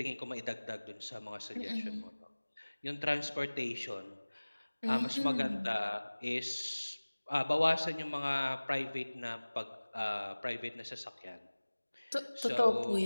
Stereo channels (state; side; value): inverted; both; correlation -1.00